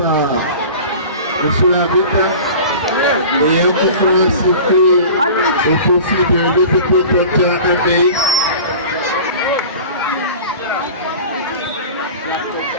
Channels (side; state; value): both; inverted; correlation -0.39